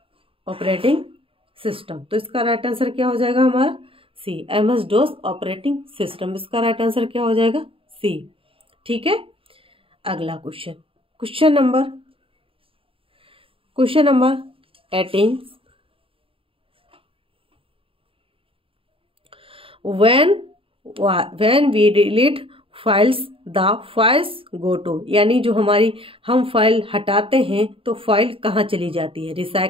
operating system. तो इसका राइट आंसर क्या हो जाएगा हमारा? C, MS DOS operating system. इसका राइट आंसर क्या हो जाएगा? सी। ठीक है, अगला question, question number 18। when we delete files the files go to, यानी जो हमारी हम फाइल हटाते हैं तो फाइल कहाँ चली जाती है?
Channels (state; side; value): late; left; 0.26 ms